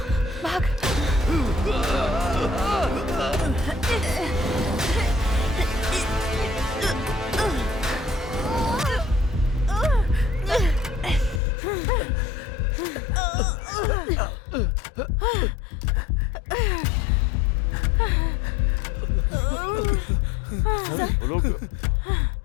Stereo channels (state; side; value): drops out; right; at 11.4 s